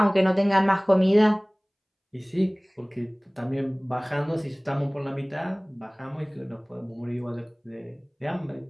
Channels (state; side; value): identical; both; correlation 1.00